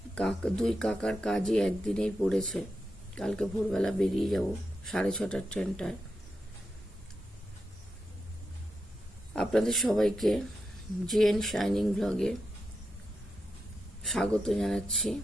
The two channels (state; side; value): normal; both; correlation 0.87